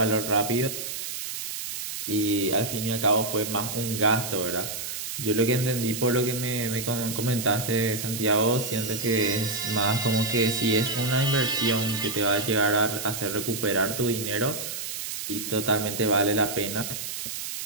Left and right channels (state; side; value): noise; right; hiss, 6 dB below the sound